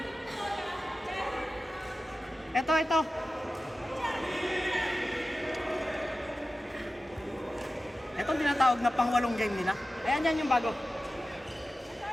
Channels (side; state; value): both; normal; correlation 0.94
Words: ito. Itong tinatawag na pang-walong game nila. Ayan, yan yung bago.